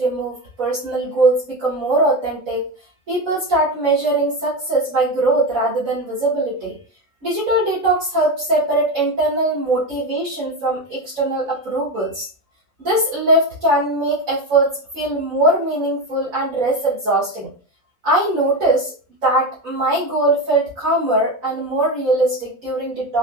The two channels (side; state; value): both; normal; correlation 0.17